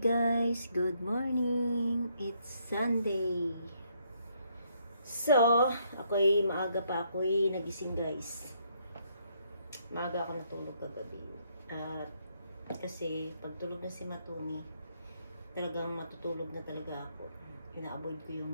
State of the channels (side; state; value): both; inverted; correlation -0.72